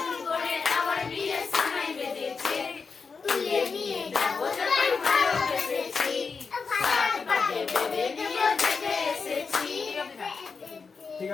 আমার বিয়ে সময় বেঁধেছে তুলে নিয়ে যাবো যখন ভালোবেসেছি পাটে বেঁধে নিয়ে জেগে এসেছি ঠিক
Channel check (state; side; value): quieter; right; 5.1 dB